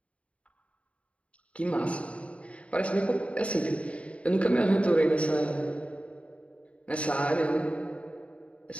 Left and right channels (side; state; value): right; late; 0.063 ms